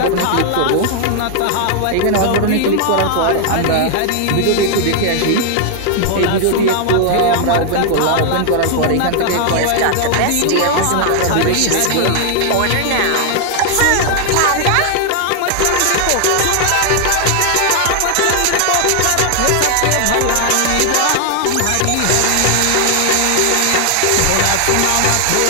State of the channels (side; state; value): both; different; correlation 0.00